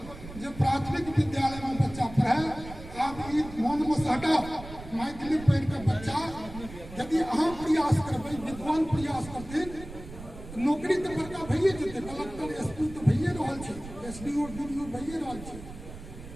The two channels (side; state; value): right; noise; rumble, 14 dB below the sound